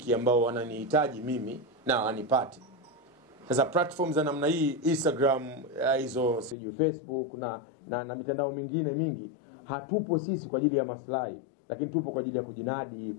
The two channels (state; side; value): drops out; right; at 6.6 s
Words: ambao wananihitaji mimi na wanipati. Sasa platform za namna hii, Instagram, hizo siju Facebook na mitandao mingine mingi, hatupo sisi kwa ajili ya maslahi, lakini tupo kwa ajili ya kujinadi,